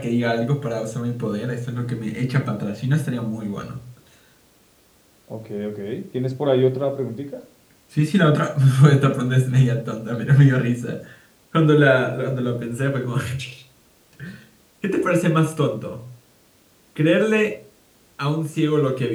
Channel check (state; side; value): identical; both; correlation 1.00